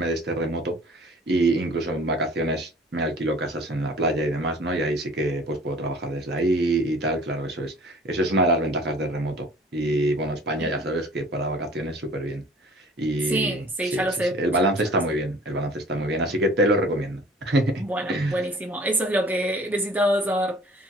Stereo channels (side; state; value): both; normal; correlation 0.49